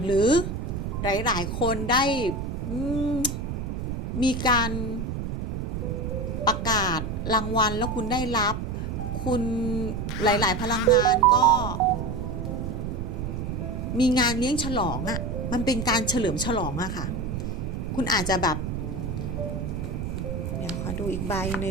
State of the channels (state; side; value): noise; right; rumble, 3 dB below the sound